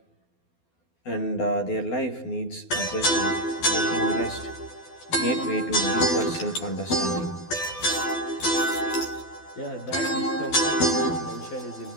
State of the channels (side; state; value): right; late; 12 ms